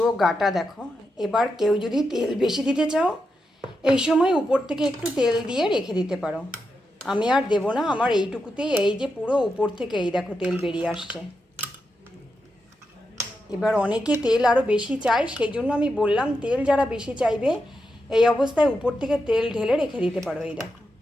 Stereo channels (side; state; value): both; normal; correlation 0.86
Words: গাটা দেখো। এবার কেউ যদি তেল বেশি দিতে চাও, এই সময় উপর থেকে একটু তেল দিয়ে রেখে দিতে পারো। আমি আর দেবো না, আমার এইটুকুতেই এই যে পুরো উপর থেকে এই দেখো তেল বেরিয়ে আসছে। এবার অনেকে তেল আরও বেশি চায়, সেই জন্য আমি বললাম তেল যারা বেশি চাইবে এই অবস্থায় উপর থেকে তেল ঢেলে রেখে দিতে পারো। এই দেখো